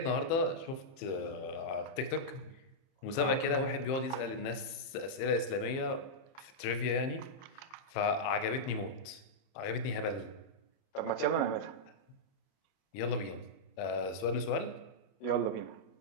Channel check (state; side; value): late; right; 30 ms